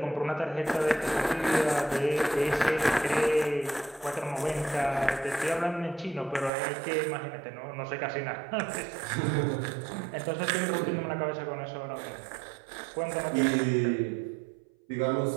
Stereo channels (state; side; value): drops out; left; at 6.5 s